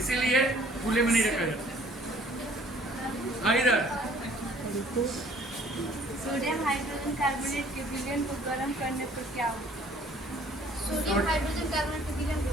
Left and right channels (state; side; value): normal; both; correlation 0.56